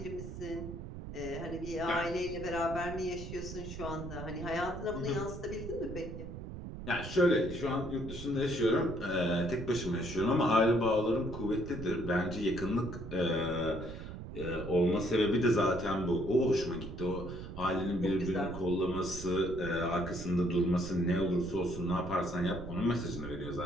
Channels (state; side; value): noise; right; rumble, 9 dB below the sound